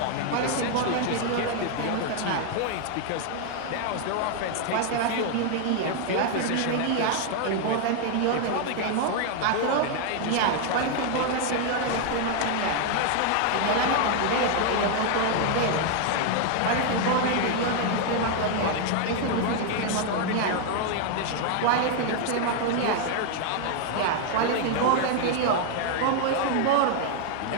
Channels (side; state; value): both; different; correlation 0.00